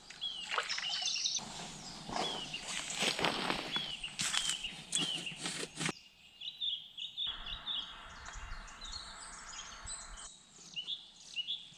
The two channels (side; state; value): both; identical; correlation 1.00